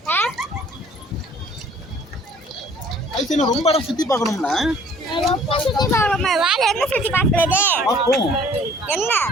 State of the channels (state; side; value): normal; both; correlation 0.55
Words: ஐசு ரொம்ப இடம் சுத்தி பார்க்கணும்ல. ரொம்ப சுத்தி பார்க்கணுமா? வேற எங்க சுத்தி பார்க்கறது? பார்ப்போம். என்ன